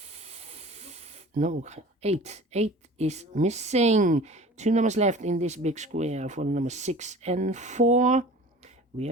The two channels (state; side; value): normal; both; correlation 0.42